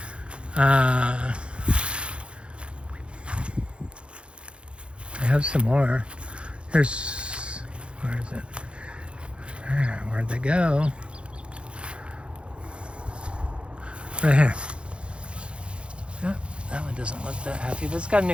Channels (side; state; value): left; late; 0.058 ms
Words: I have some more. Where is it? Where'd they go? Right here. Yep, that one doesn't look that happy, but it's got a